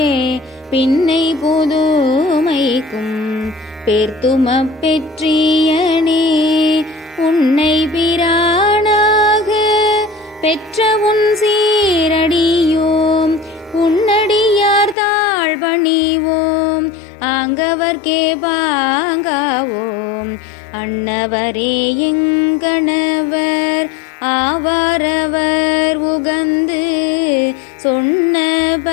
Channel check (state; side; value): drops out; right; at 15.0 s